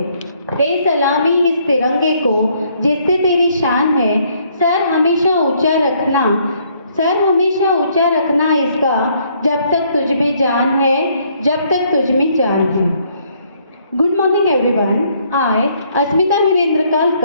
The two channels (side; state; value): both; inverted; correlation -0.67